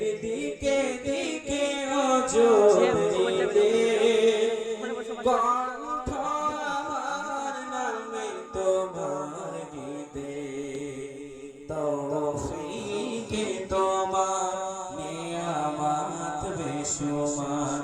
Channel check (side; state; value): both; identical; correlation 1.00